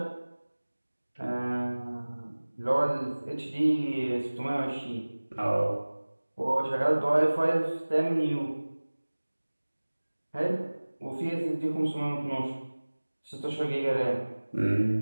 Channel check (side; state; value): both; inverted; correlation -1.00